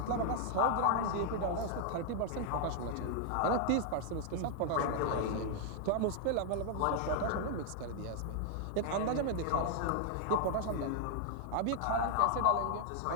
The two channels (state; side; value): different; both; correlation 0.00